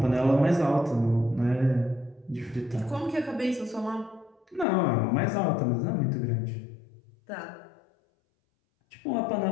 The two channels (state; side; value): drops out; right; at 4.7 s